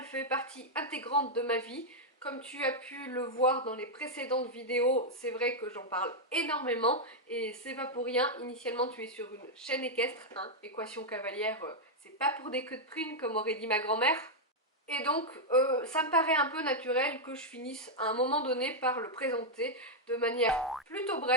fait partie intégrante de ma vie. Comme tu as pu le voir dans les précédentes vidéos, c'est vrai que j'en parle énormément et c'est pas pour rien. Initialement, tu es sur une chaîne équestre, hein, équation cavalière, c'est pas pour des queues de prune comme aurait dit ma grand-mère. Et donc, ça me paraît un peu naturel que je finisse à un moment donné par le présenter de manière plutôt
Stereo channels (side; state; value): both; normal; correlation -0.02